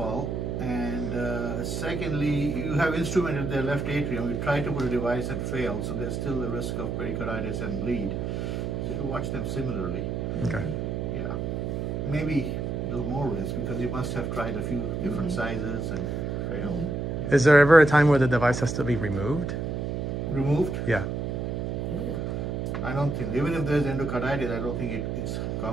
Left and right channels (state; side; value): noise; right; hum, 2 dB below the sound